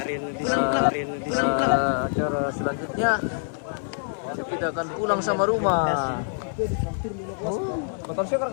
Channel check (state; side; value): silent; right; 61 dB below the other